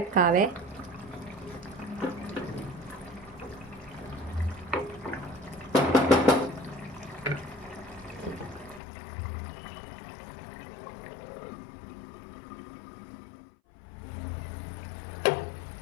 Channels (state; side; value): drops out; right; at 8.8 s